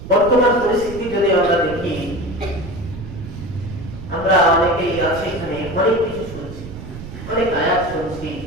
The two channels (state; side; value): noise; right; rumble, 12 dB below the sound